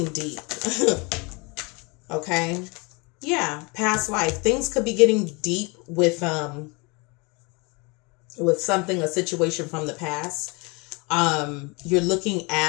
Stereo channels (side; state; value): right; quieter; 28.7 dB